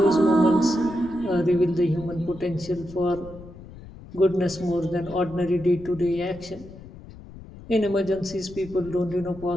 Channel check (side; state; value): left; noise; rumble, 17 dB below the sound